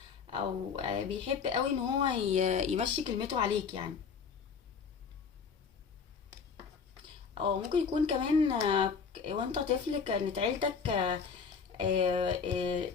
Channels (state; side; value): quieter; right; 5.9 dB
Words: او بيحب قوي ان هو يمشي كلمته عليك يعني. او ممكن يكون كمان وانت طفل كانت عيلتك